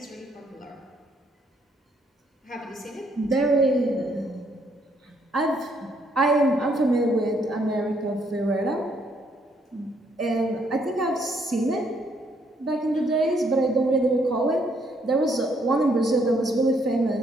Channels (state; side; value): normal; both; correlation 0.70